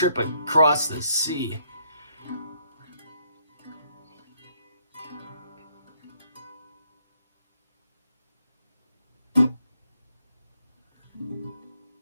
across the sea.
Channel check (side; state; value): both; inverted; correlation -0.70